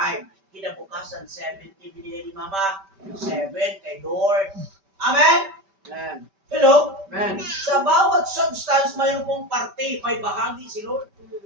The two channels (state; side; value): late; left; 5.2 ms